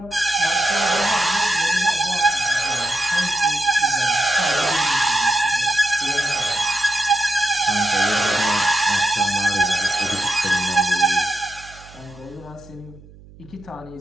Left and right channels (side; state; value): right; noise; hum, 22 dB below the sound